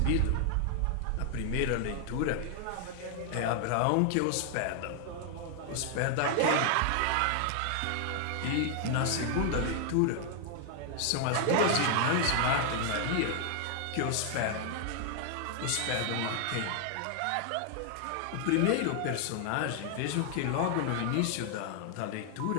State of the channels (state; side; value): different; both; correlation 0.00